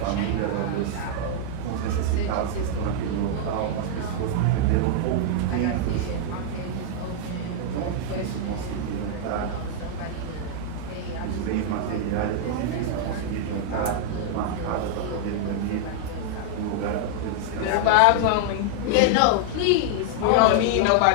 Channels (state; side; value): different; both; correlation -0.01